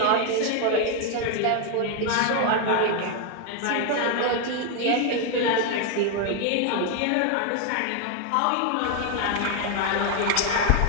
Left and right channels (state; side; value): different; both; correlation 0.01